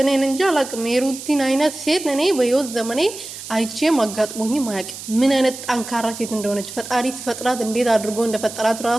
እኔን እንጂ አላቅም። የሩቲን አይነት ሴት እኔ በህይወት ዘመኔ አይቼም አጋጥሞኝም አያውቅም። ምን አይነት ጠንካራ ሴት እንደሆነች ፈጣሪ ሲፈጥራት እንዴት አድርጎ እንደፈጠራት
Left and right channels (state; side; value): noise; right; hiss, 11 dB below the sound